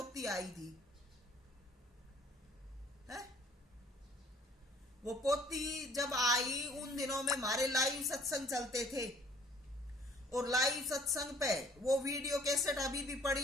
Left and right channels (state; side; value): normal; both; correlation 0.56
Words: आई थी है? वो पोती जब आई उन दिनों में हमारे लाइव सत्संग चलते थे, और लाइव सत्संग पे वो वीडियो कैसेट अभी भी